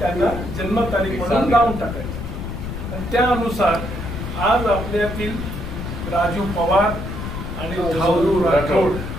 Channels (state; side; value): noise; left; rumble, 7 dB below the sound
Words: जन्मतारीख म्हणून लावून टाकायची. आणि त्यानुसार आज आपल्यातील राजू पवार आणि धावरू राठोड